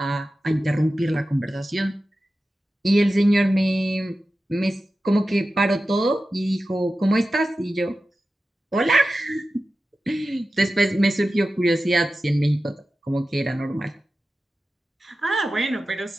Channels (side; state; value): both; normal; correlation 0.94